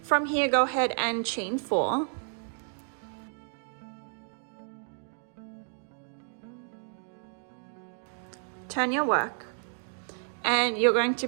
From here, go ahead and chain 4. Turn your work, and you're going to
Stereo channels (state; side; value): silent; left; digital silence